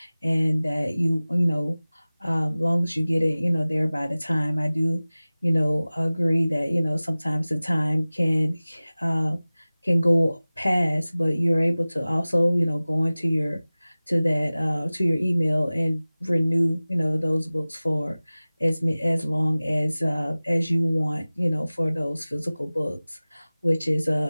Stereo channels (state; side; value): inverted; both; correlation -0.98